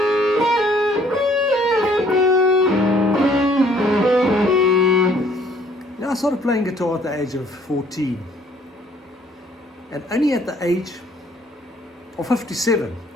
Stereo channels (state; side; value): normal; both; correlation 0.60